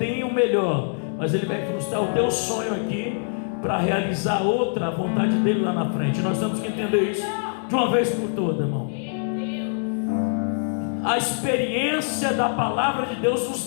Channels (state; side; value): silent; right; digital silence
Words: o melhor, mas Ele vai frustrar o teu sonho aqui para realizar outra vontade dele lá na frente. Nós temos que entender isso de uma vez por todas, irmão. A experiência da palavra de Deus